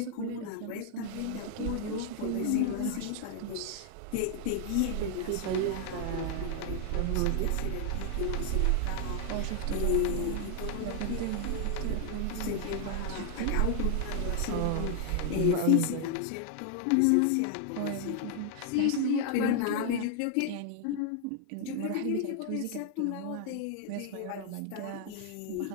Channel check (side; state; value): both; different; correlation 0.00